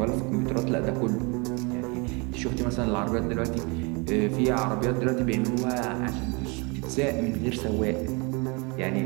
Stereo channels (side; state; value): left; quieter; 30.1 dB